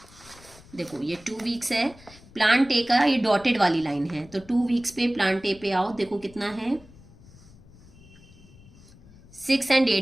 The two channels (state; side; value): noise; left; rumble, 23 dB below the sound